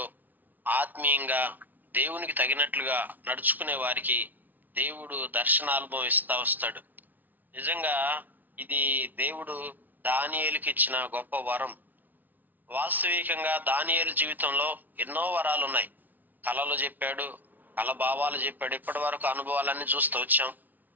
ఆత్మీయంగా, దేవునికి తగినట్లుగా నడుచుకునే వారికి దేవుడు దర్శనానుభవం ఇస్తా వస్తాడు. నిజంగా ఇది దేవుడు దానియేలుకి ఇచ్చిన గొప్ప వరం. వాస్తవికంగా దానియేలు జీవితంలో ఎన్నో వరాలు ఉన్నాయి. కళలు చెప్పాడు, కళ భావాలు చెప్పాడు. ఇప్పటి వరకు అనుభవాలన్నీ చూస్తూ వచ్చాం.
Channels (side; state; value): left; late; 0.082 ms